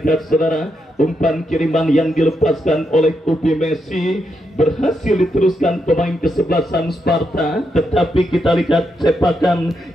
saudara, umpan kiriman yang dilepaskan oleh Upi Messi berhasil diteruskan pemain kesebelasan Sparta, tetapi kita lihat sepakan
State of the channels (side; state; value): both; normal; correlation 0.82